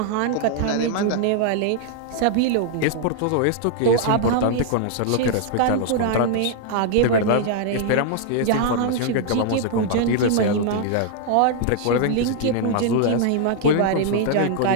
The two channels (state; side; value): different; both; correlation -0.01